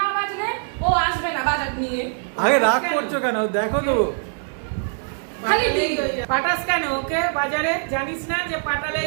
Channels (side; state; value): left; silent; 64 dB below the other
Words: না বাজলে ও আসবে না বাজার নিয়ে। আগে রাগ করছো কেন? দেখো তো খালি পাঠাস কেন ওকে বাজারে? জানিস না যে